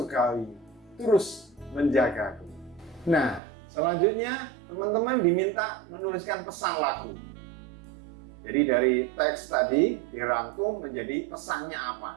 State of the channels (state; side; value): drops out; left; at 3.4 s